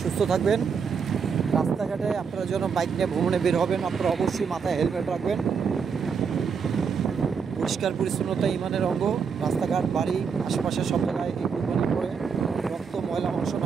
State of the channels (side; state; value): left; quieter; 6.1 dB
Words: সুস্থ থাকবেন। রাস্তাঘাটে আপনারা যেন বাইক নিয়ে ভ্রমণে বের হবেন, আপনারা অবশ্যই মাথায় হেলমেট রাখবেন। পরিষ্কার পরিচ্ছন্নতা ইমানের অঙ্গ। রাস্তাঘাট, বাড়ি, আশেপাশে সব জায়গায় এই কুরবানি করে রক্ত, ময়লা মাংস